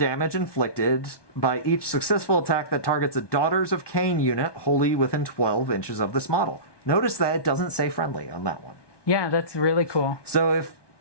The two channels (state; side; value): late; right; 1.2 ms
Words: inflicted by each successful attack that targets a Daughters of Khaine unit wholly within 12 inches of this model. Notice that it doesn't say friendly on that one. Yeah, that's really cool. So if